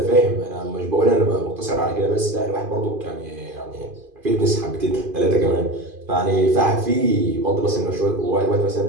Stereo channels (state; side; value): late; left; 2.5 ms